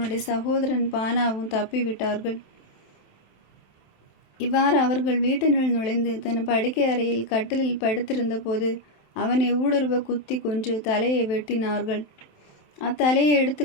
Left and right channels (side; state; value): right; late; 27 ms